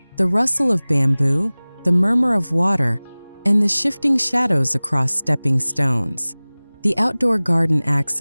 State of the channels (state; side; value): inverted; both; correlation -1.00